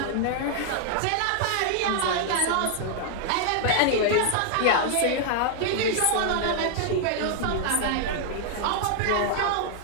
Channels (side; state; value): both; different; correlation 0.00